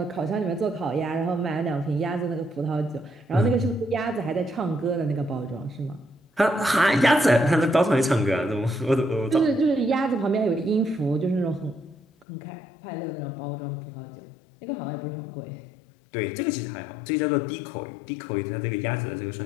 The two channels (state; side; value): drops out; right; at 12.2 s